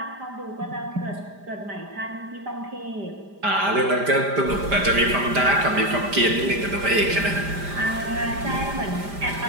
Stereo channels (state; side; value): late; left; 5.0 ms